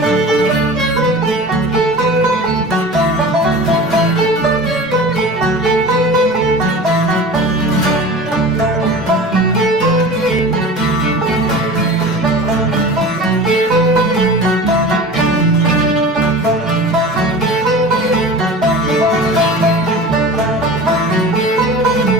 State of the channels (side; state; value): both; normal; correlation 0.36